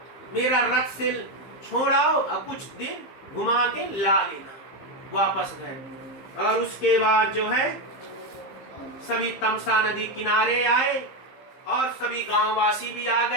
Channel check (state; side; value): late; right; 15 ms